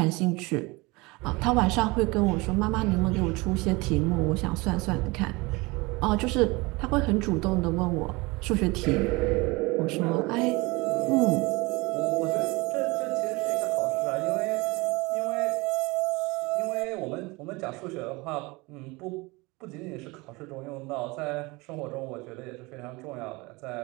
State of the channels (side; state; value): left; quieter; 24.4 dB